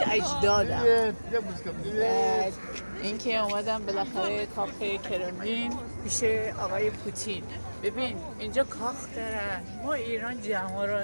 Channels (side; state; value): both; inverted; correlation -1.00